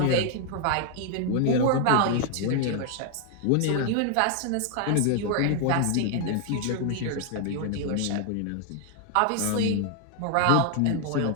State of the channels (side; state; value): both; different; correlation 0.00